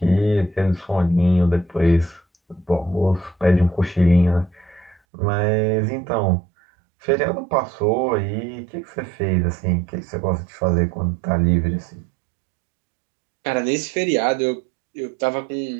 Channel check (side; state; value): left; drops out; at 5.0 s